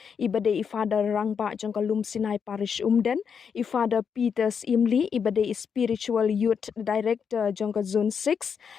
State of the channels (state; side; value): quieter; right; 6.7 dB